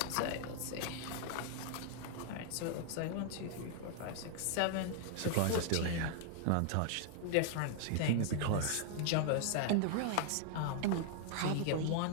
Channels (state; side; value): different; both; correlation 0.00